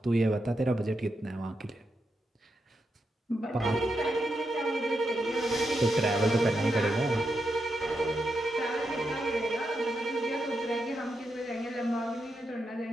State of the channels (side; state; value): both; normal; correlation 0.85